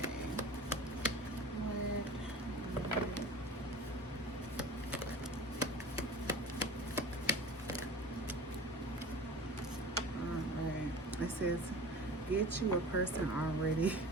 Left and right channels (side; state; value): both; normal; correlation 0.38